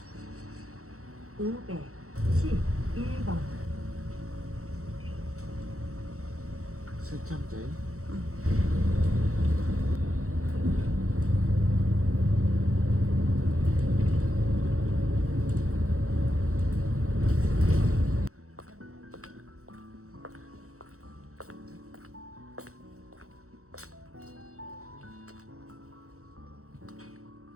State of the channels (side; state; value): left; late; 0.64 ms